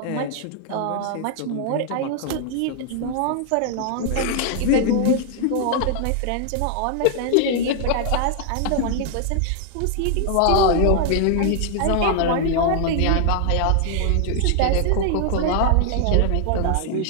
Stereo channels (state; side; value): different; both; correlation 0.00